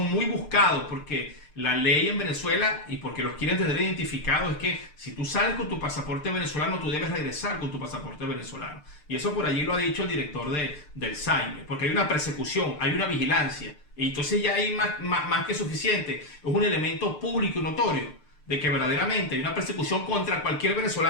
muy buscados porque la ley en Venezuela, y porque los quieren tener identificados, es que si tú sales con tu pasaporte venezolano, tú debes regresar con tu pasaporte venezolano. Y eso por allí lo ha dicho el director del SAIME, porque hay una persecución, hay una vigilancia. Y entonces ya hay más que suficiente. Es un elemento público y notorio de que verdaderamente hay una persecución contra cualquier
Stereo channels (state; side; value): late; right; 6.7 ms